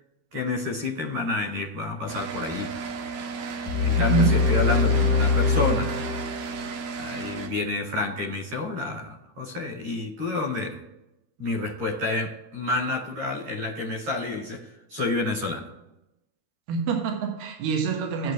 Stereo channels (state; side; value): late; left; 13 ms